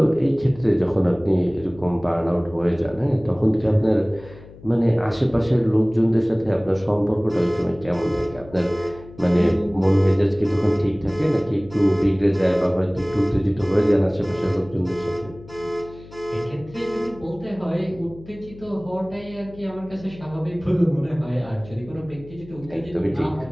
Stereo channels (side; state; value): left; noise; hum, 19 dB below the sound